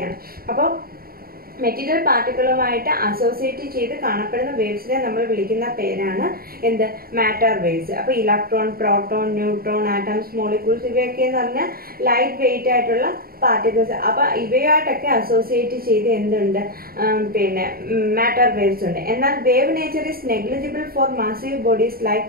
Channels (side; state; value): left; late; 0.43 ms